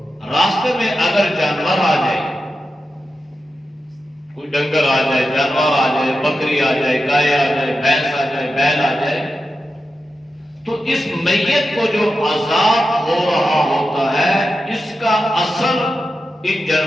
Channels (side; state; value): both; normal; correlation 0.90